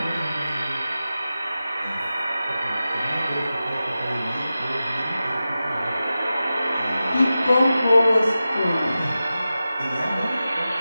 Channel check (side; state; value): both; inverted; correlation -0.93